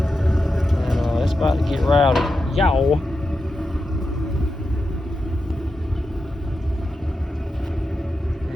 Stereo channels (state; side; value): normal; both; correlation 0.89